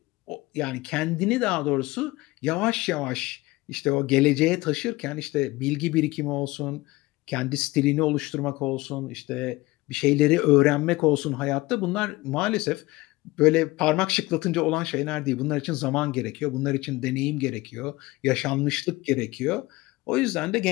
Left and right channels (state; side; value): quieter; right; 20.3 dB